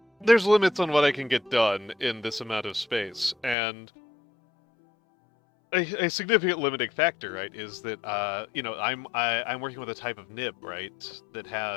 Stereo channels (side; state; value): right; drops out; at 3.6 s